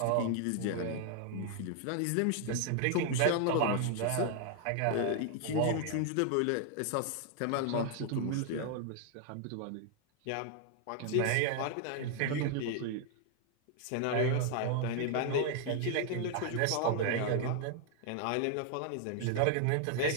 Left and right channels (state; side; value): different; both; correlation 0.00